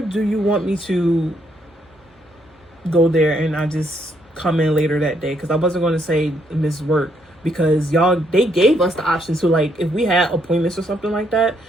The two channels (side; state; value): both; normal; correlation 0.73